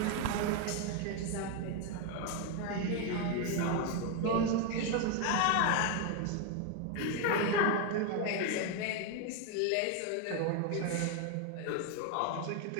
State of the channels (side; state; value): both; different; correlation 0.01